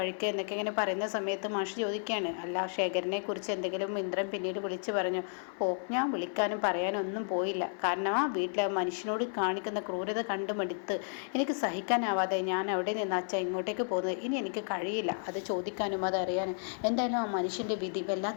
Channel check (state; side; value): silent; right; 56 dB below the other